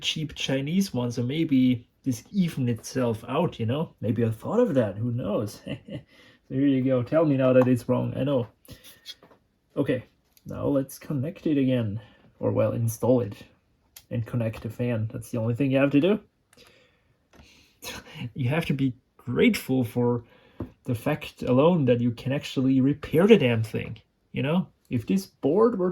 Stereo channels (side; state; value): both; identical; correlation 1.00